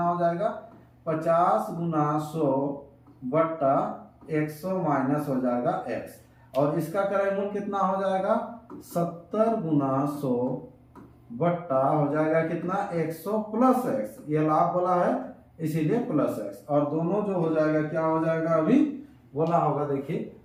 हो जाएगा? 50 गुना 100 बट्टा 100 माइनस हो जाएगा x, और इसका क्रय मूल्य कितना हो जाएगा? 70 गुना 100 बट्टा हो जाएगा कितना? 100 प्लस x, ये लाभ बोला है इसीलिए प्लस x, और दोनों जो हो जाएगा क्या हो जाएगा? अभी बोला होगा, देखिए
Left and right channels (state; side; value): identical; both; correlation 1.00